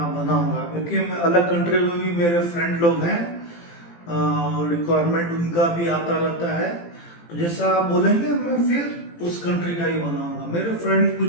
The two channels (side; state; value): right; late; 18 ms